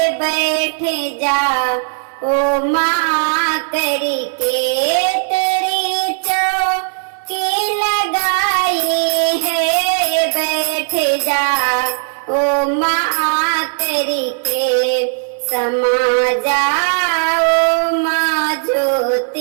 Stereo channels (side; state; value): left; silent; digital silence